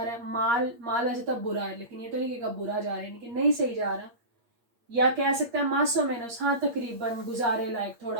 है। माल वैसे तब बुरा है, लेकिन ये तो नहीं कि बुरा जा रहा है, यानी कि नहीं सही जा रहा। या कह सकता है मासो मेनोस, हाँ तकरीबन, गुजारे लायक,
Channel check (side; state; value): left; late; 8.5 ms